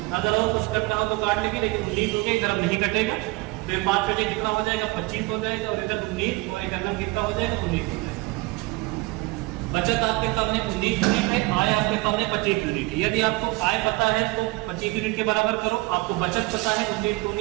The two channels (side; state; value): left; quieter; 22.7 dB